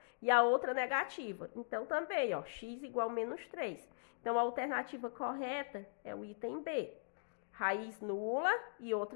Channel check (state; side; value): silent; right; digital silence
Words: E a outra negativa. Então, também, ó, x igual a menos 3. Então, a alternativa correta é o item B. Raiz nula e